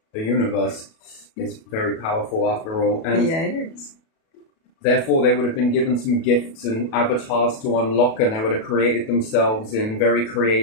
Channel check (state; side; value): late; right; 37 ms